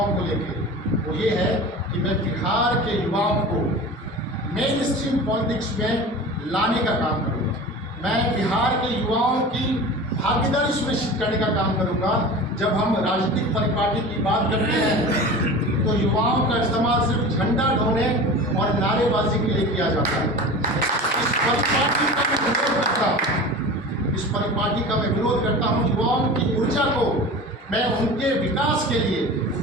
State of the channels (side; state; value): both; normal; correlation 0.34